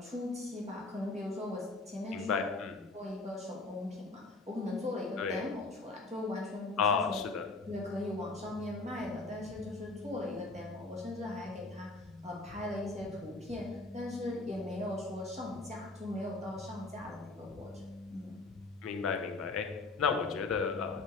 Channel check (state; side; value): quieter; right; 3.5 dB